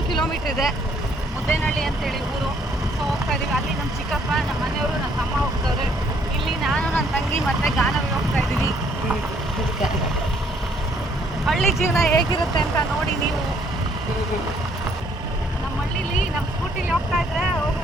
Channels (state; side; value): normal; both; correlation 0.65